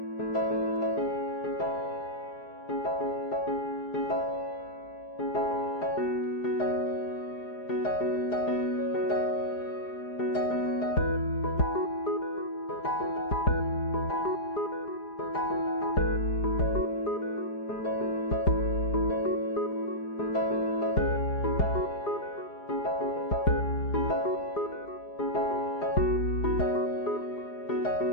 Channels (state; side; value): late; right; 4.9 ms